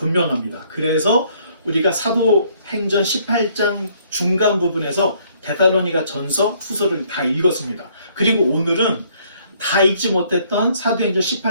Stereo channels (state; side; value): inverted; both; correlation -0.65